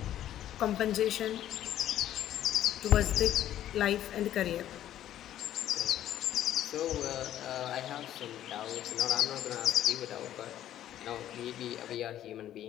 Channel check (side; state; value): right; quieter; 11.9 dB